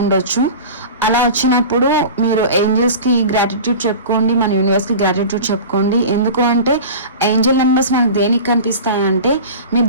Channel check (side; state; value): both; inverted; correlation -0.34